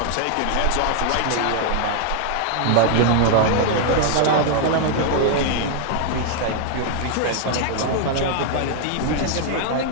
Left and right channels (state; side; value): different; both; correlation 0.00